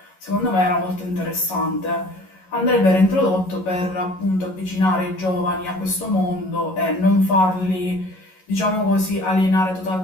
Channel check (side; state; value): right; late; 11 ms